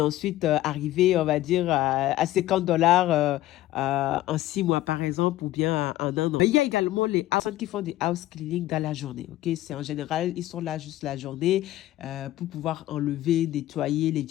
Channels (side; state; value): right; quieter; 15.3 dB